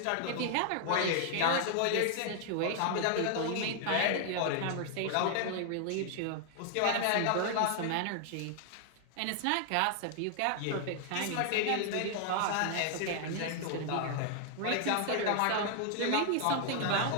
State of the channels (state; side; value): different; both; correlation 0.00